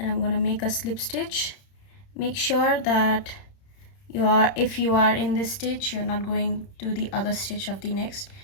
I'm gonna make a slip stitch. Make sure that if you are in this stitch, you're not going to the other stitch of the next.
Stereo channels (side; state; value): right; late; 30 ms